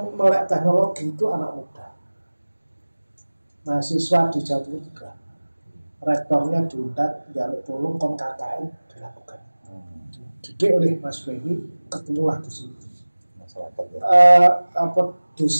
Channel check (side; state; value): both; inverted; correlation -1.00